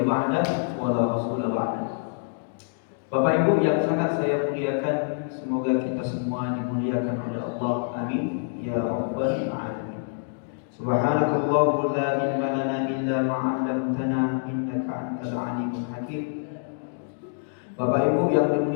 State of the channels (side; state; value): right; silent; digital silence